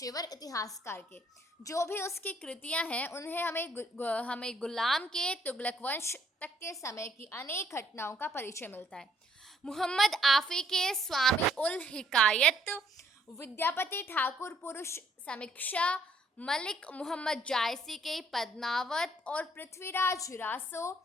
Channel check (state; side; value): normal; both; correlation 0.66